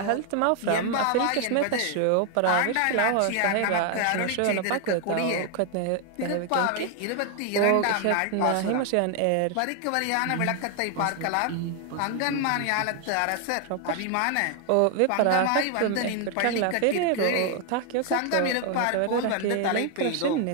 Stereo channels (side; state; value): both; different; correlation 0.00